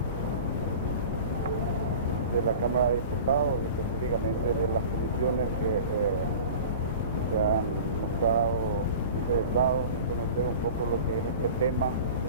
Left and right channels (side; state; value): both; inverted; correlation -0.38